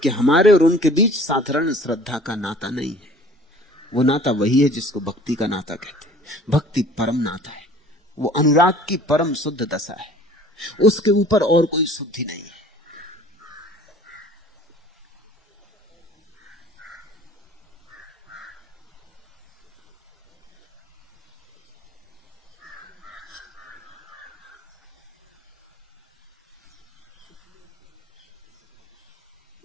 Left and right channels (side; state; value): both; normal; correlation 0.49